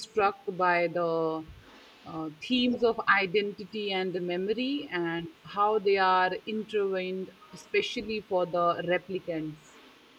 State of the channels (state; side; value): identical; both; correlation 1.00